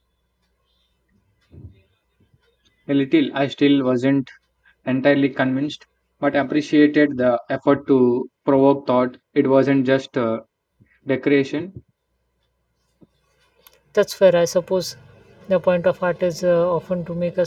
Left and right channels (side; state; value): both; identical; correlation 1.00